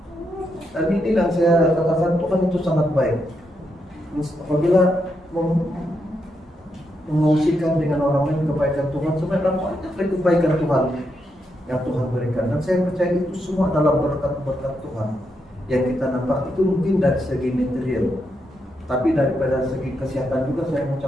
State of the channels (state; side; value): normal; both; correlation 0.82